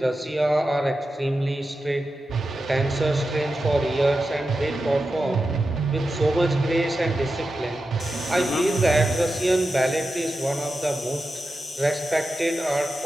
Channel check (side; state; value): both; normal; correlation 0.91